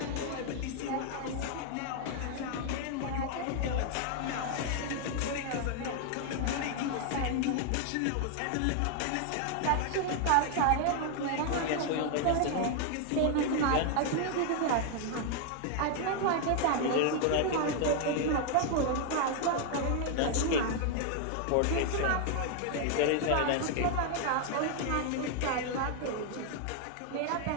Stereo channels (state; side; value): different; both; correlation 0.00